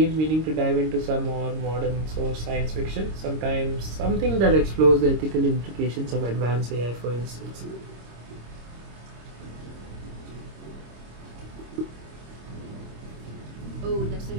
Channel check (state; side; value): late; left; 26 ms